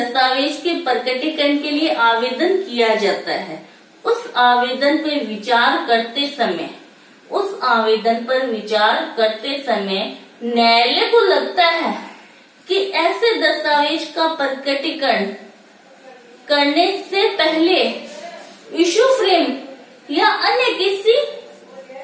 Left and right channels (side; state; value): both; identical; correlation 1.00